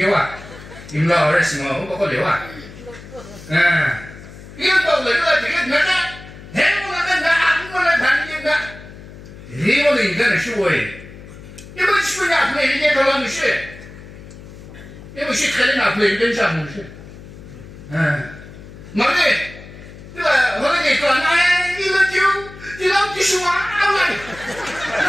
Imla orang semua kau lewat. Yang tahu lewat jadi mana? Hemu nak aku nak tanya nak. Hemu ni kan suai. Ibu sebenarnya apa ini kalau mesti. Ibu sih kalau nak beli dan sama mesti. Mana? Tu orang ni kalau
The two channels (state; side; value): noise; left; hum, 16 dB below the sound